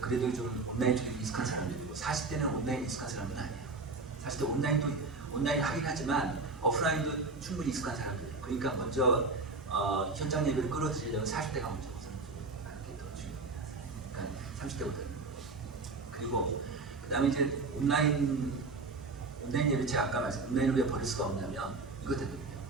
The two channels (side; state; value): left; quieter; 3.7 dB